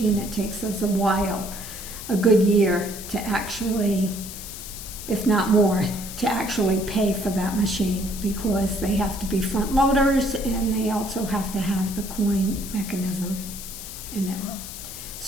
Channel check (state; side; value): noise; left; hiss, 11 dB below the sound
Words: it takes us a while, a good year to actually, if not more, to actually pay for that machine, because they have to be front loaders and they also have to have the coin mechanism in it.